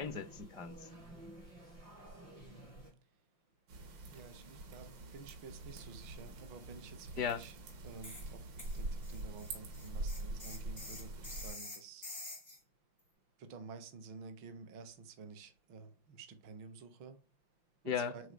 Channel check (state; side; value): late; left; 5.7 ms